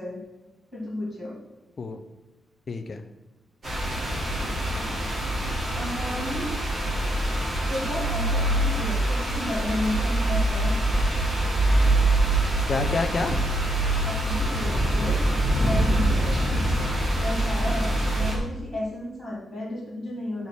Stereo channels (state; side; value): normal; both; correlation 0.76